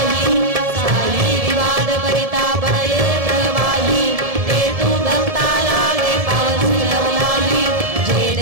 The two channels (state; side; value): late; left; 1.7 ms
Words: साई विवाद करिता पडये प्रवाही ते तू भक्ता लागे पावसी लवलाही जय